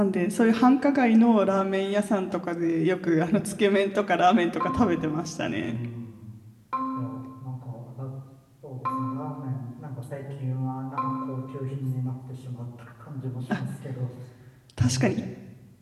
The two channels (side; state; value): both; identical; correlation 1.00